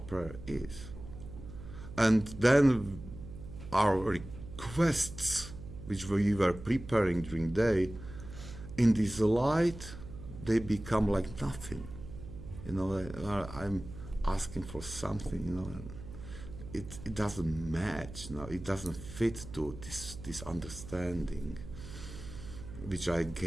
prayer is. And then our requests, which we were preparing during the day, in this light, they become like nothing. I'm asking for something, and it doesn't match. It doesn't fit to this understanding which I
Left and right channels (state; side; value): noise; right; hum, 13 dB below the sound